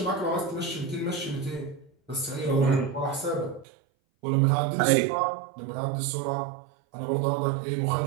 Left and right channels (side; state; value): left; drops out; at 3.7 s